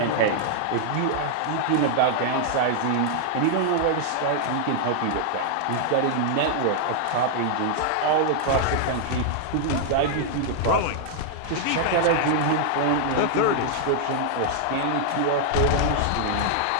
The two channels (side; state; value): both; different; correlation -0.01